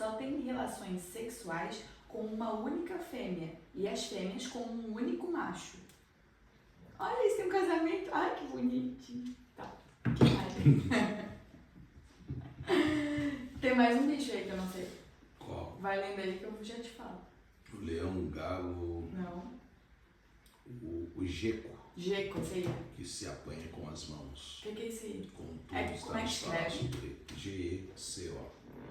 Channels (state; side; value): identical; both; correlation 1.00